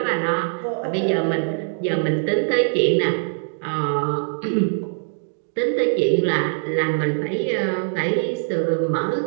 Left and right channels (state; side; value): silent; left; digital silence